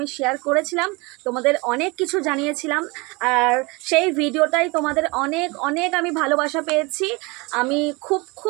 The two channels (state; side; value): quieter; left; 26.3 dB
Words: শেয়ার করেছিলাম, তোমাদের অনেক কিছু জানিয়েছিলাম। আর সেই ভিডিওটাই তোমাদের অনেক অনেক আমি ভালোবাসা পেয়েছি। আমি খুব